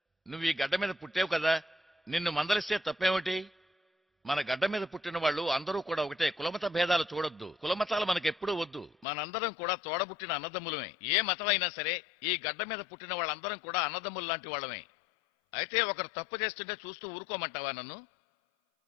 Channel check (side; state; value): right; drops out; at 9.1 s